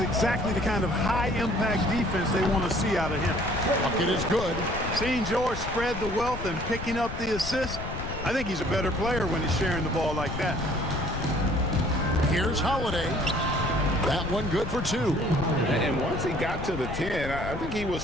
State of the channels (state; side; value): noise; left; rumble, 8 dB below the sound